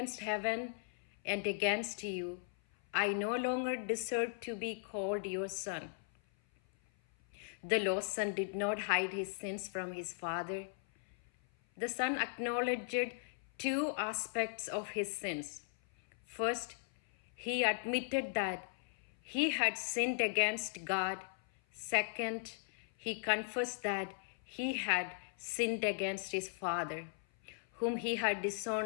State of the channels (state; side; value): silent; right; 53 dB below the other